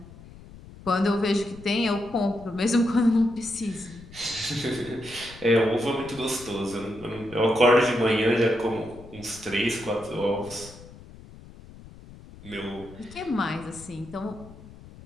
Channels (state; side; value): noise; left; rumble, 18 dB below the sound